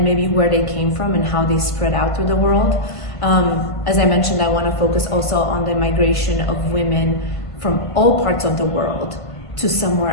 maybe where they came from and how they spread out through the world. As I mentioned, I want to focus also on the migration of women from all parts of the world to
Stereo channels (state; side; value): late; right; 1.5 ms